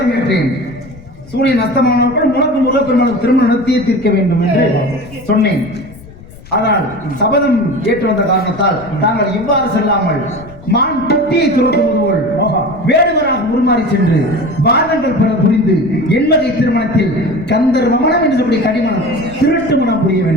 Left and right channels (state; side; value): noise; left; rumble, 20 dB below the sound